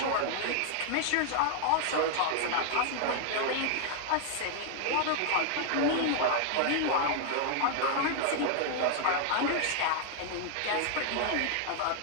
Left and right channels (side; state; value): both; different; correlation 0.00